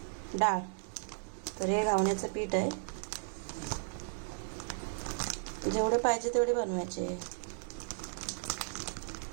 डाळ तर हे घावण्याचं पीठ आहे, जेवढे पाहिजे तेवढे बनवायचे।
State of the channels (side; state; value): left; silent; digital silence